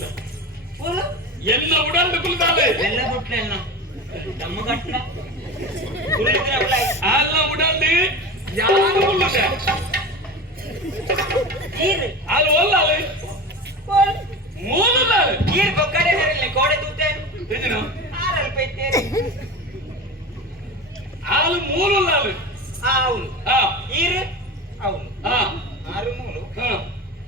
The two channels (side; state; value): both; normal; correlation 0.29